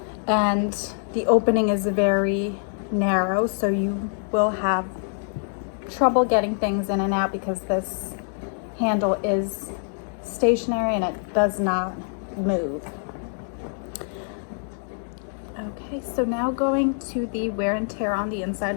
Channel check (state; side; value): silent; right; digital silence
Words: and the opening is very narrow, so you will have trouble getting things in and out because this handle is stationary and it does not move. Okay, so now going to the wear and tear on the inside